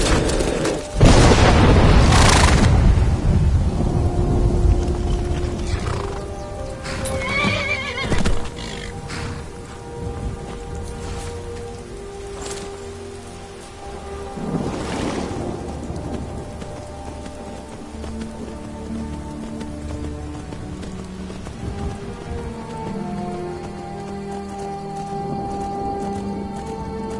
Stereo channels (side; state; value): both; identical; correlation 1.00